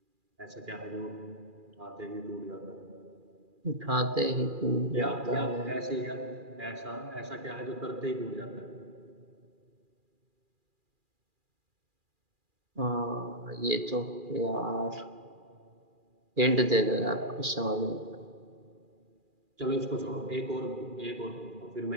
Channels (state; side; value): late; left; 2.4 ms